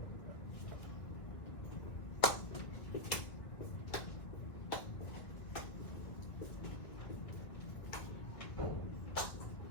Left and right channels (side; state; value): right; late; 2.1 ms